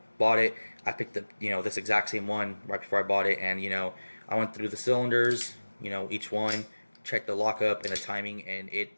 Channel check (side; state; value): both; inverted; correlation -1.00